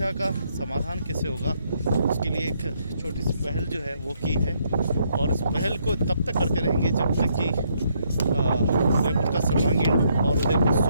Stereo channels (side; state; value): both; inverted; correlation -0.73